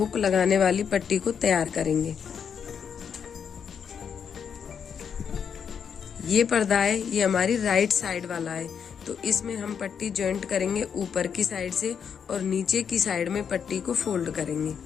लगाने वाली पट्टी को तैयार करेंगे। ये पर्दा है, ये हमारी राइट साइड वाला है, तो इसमें हम पट्टी जॉइंट करेंगे ऊपर की साइड से और नीचे की साइड में पट्टी को फोल्ड करेंगे।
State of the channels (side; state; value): right; quieter; 7.2 dB